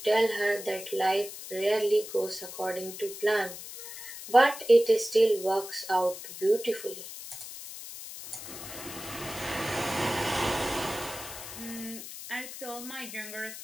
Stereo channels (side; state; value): left; noise; hiss, 11 dB below the sound